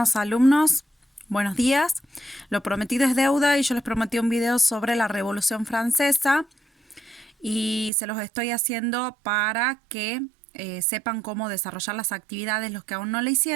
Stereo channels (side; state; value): left; drops out; at 7.9 s